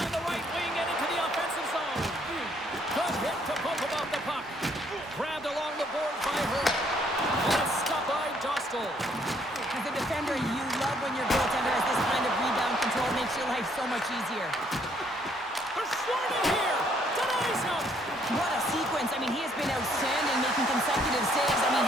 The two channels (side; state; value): both; normal; correlation 0.67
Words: the right wing and into the offensive zone. Good hit to poke about the puck. Grabbed along the boards by her. And a stop by Dostal. As a defender, you love when your goaltender has this kind of rebound control. Makes your life so much easier. They're swarming here. Denies him. What a sequence. I mean, he has been outstanding, making consecutive saves. I mean,